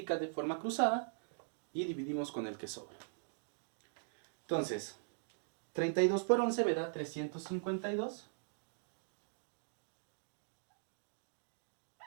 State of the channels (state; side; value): silent; left; digital silence